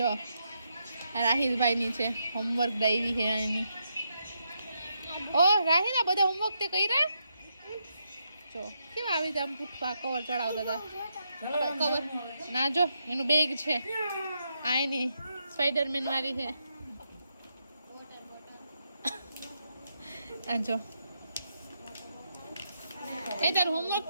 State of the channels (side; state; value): both; inverted; correlation -0.81